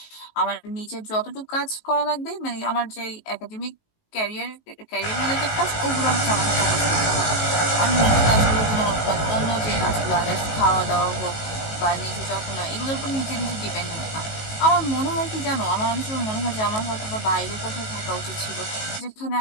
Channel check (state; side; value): late; right; 19 ms